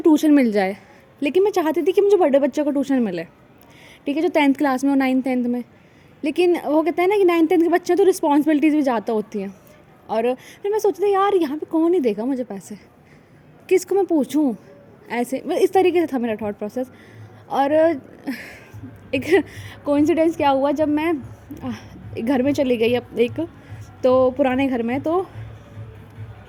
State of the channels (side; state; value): both; identical; correlation 1.00